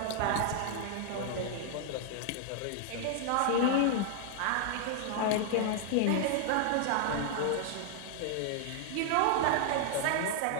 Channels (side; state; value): both; different; correlation 0.00